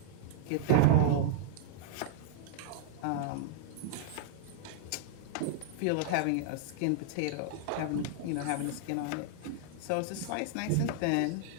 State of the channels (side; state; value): both; different; correlation -0.02